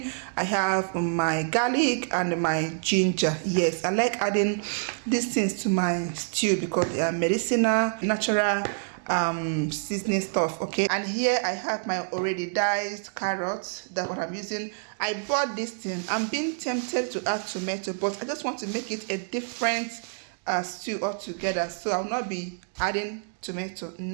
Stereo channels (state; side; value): silent; left; digital silence